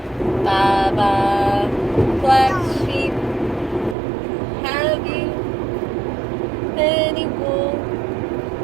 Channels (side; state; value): left; drops out; at 4.0 s